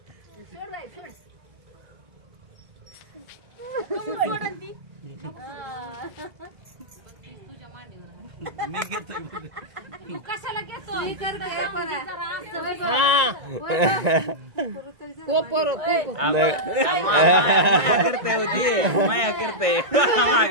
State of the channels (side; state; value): left; late; 2.0 ms